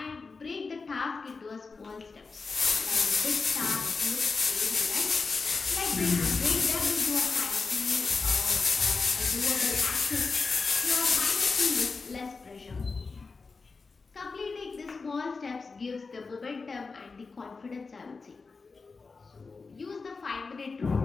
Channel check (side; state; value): right; quieter; 4.4 dB